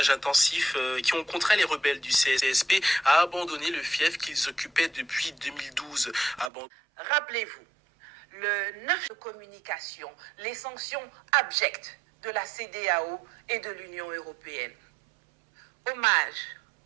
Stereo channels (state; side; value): drops out; left; at 6.5 s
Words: intensif qui ont contraint les rebelles du CSP à abandonner le fief qu'ils occupaient depuis 2012. Rappelez-vous, le 9 de communication, les sanctions abjectes de la CEDEAO et de l'Union européenne. Hommage